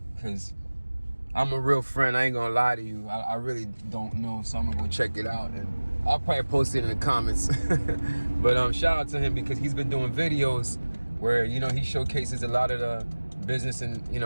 I'm a real friend. I ain't gonna lie to you. I really don't know, so I'm gonna go check it out, and I'll probably post it in the comments. But shout out to him because he's been doing videos where he showcases a lot of the business in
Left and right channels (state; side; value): inverted; both; correlation -1.00